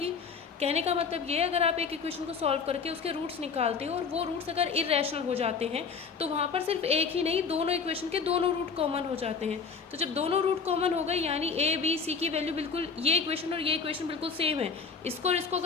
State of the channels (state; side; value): quieter; right; 5.5 dB